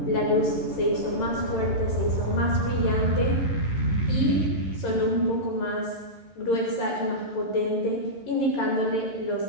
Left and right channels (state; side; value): late; right; 11 ms